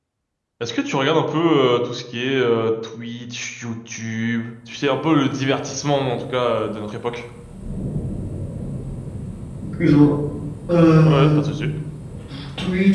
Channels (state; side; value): identical; both; correlation 1.00